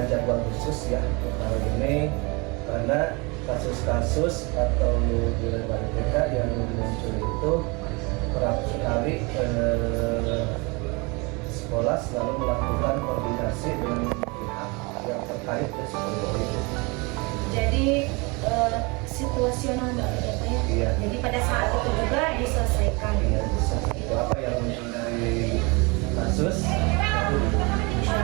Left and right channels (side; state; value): left; quieter; 28.0 dB